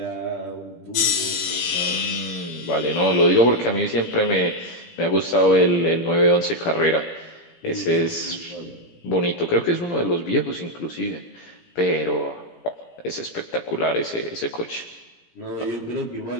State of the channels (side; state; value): right; late; 17 ms